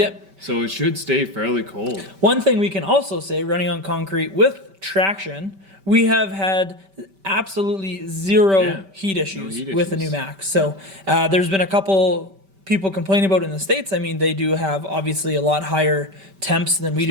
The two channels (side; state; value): left; late; 5.2 ms